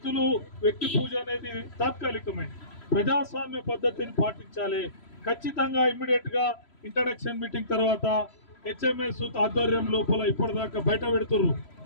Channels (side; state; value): right; late; 3.0 ms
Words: పూజ అనేది తాత్కాలికమే, ప్రజాస్వామ్య పద్ధతిని పాటించాలి. ఖచ్చితంగా ఇమ్మీడియట్ గా ఇంట్రడక్షన్ మీటింగ్ తర్వాత హెచ్ఎంఎస్ ఆధ్వర్యం లోపల ఇప్పటిదాకా బయట పెడుతున్నారు.